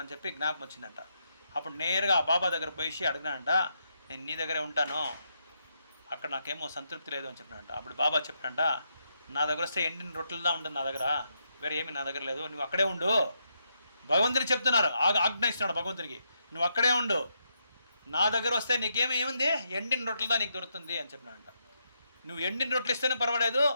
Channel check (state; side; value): inverted; both; correlation -0.80